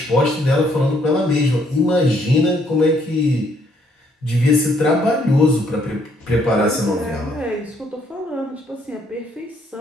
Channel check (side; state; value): both; normal; correlation 0.68